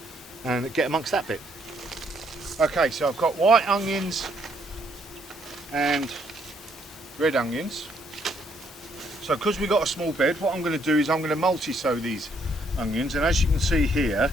and get amongst that bit. Okay, so I've got white onions and red onions. So because we've got a small bed, what I'm going to do is I'm going to multi-sow these onions, and as you can see here,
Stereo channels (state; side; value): normal; both; correlation 0.70